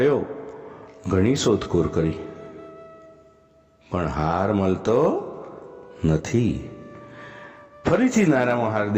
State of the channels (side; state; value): both; identical; correlation 1.00